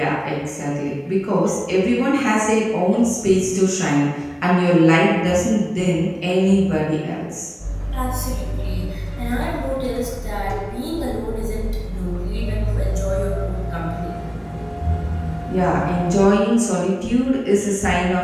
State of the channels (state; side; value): identical; both; correlation 1.00